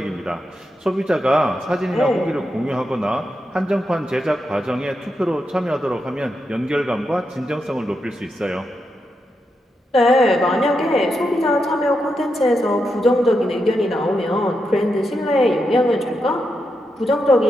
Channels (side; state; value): both; normal; correlation 0.85